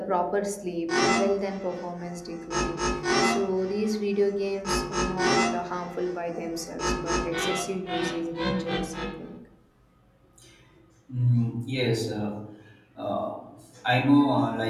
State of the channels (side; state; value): both; identical; correlation 1.00